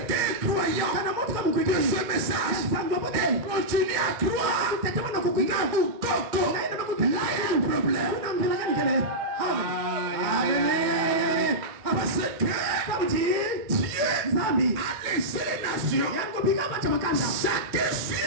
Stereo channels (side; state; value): left; late; 2.1 ms